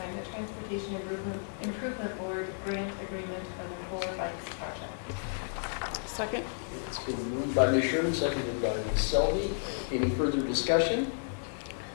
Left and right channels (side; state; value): right; silent; 56 dB below the other